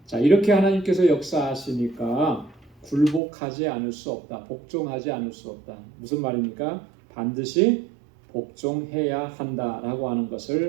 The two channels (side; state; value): left; drops out; at 3.2 s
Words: 자, 이렇게 하나님께서 역사하시니까 굴복하지 않을 수 없다. 복종하지 않을 수 없다. 무슨 말입니까? 반드시 복종해야 한다라고 하는